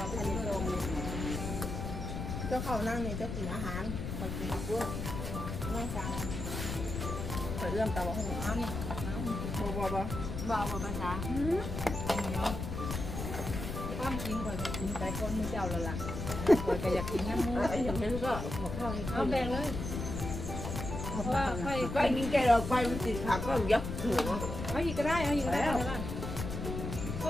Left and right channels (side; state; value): left; noise; rumble, 5 dB below the sound